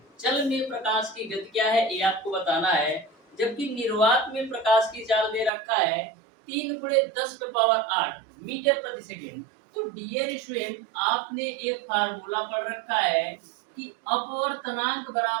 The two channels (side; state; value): left; drops out; at 5.5 s